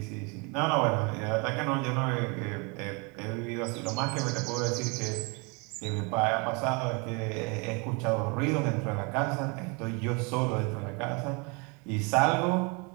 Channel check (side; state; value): left; quieter; 31.1 dB